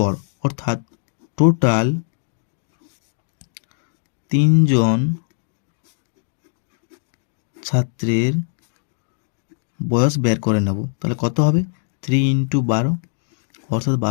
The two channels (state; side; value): silent; right; digital silence